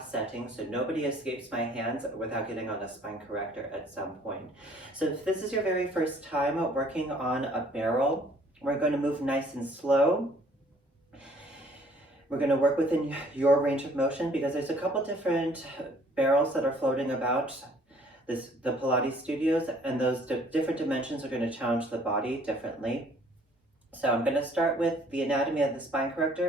setting, so nobody escapes my hands without getting on a spine corrector at some point. So if this is your very first time working on a barrel, we're going to move nice and slow. We're going to work within your range of motion because there's a couple different barrels that are floating about the Pilates studios, and those different dimensions are going to challenge the body differently. So I'm going to start with the anatomy of the spine corrector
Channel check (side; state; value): both; normal; correlation 0.58